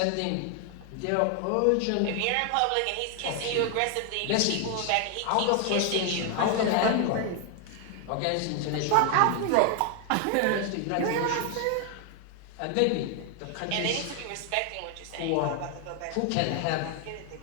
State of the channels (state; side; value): different; both; correlation 0.00